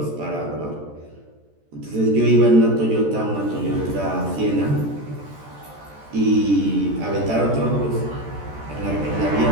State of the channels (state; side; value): late; left; 14 ms